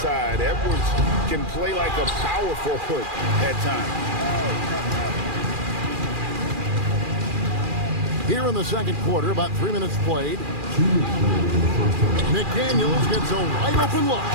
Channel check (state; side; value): late; left; 2.4 ms